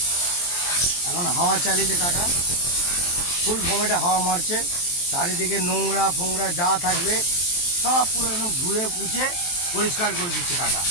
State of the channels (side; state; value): right; late; 23 ms